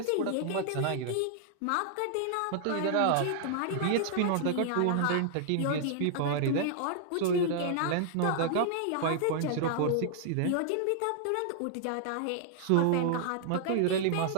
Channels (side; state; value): both; different; correlation 0.00